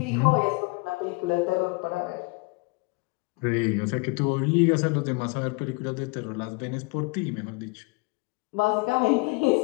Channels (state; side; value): quieter; right; 28.8 dB